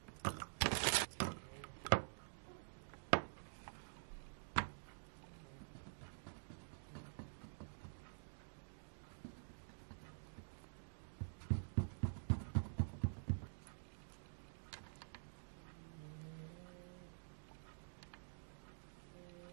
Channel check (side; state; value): left; silent; digital silence